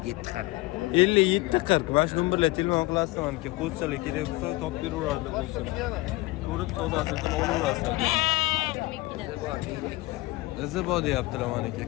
40. 57 40. Mana shu nomerlarga telefon qilasizlar, maniki qo'zichalar kerak bo'lsa topib beraveradi qo'zichalar. Ko'rib savdosini qilib olaverasizlar. Izi bor deyaptilar maniki.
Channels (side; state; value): right; quieter; 20.6 dB